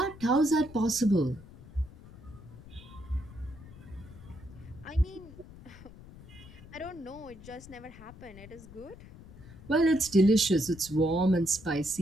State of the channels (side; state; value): left; noise; rumble, 18 dB below the sound